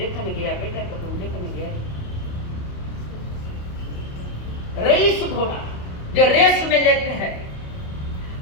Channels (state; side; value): late; right; 28 ms